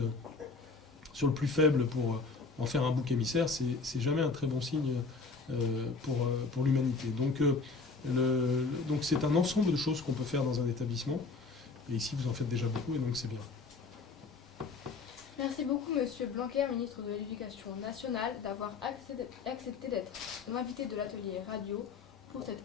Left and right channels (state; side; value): quieter; right; 4.2 dB